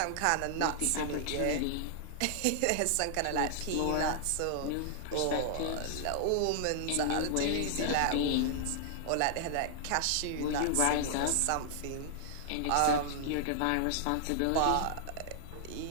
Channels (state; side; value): different; both; correlation -0.01